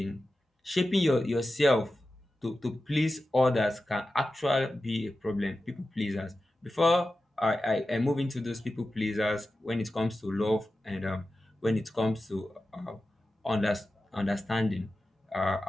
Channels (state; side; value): normal; both; correlation 0.93